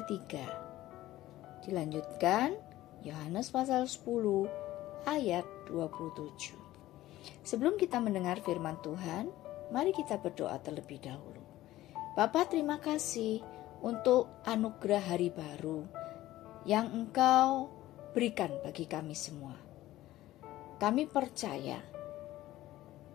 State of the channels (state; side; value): quieter; right; 15.6 dB